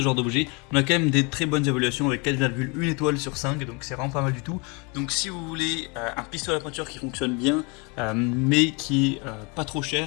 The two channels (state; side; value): quieter; right; 30.7 dB